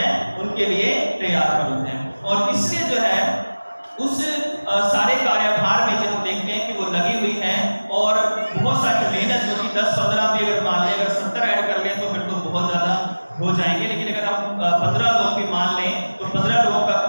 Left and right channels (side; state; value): both; inverted; correlation -1.00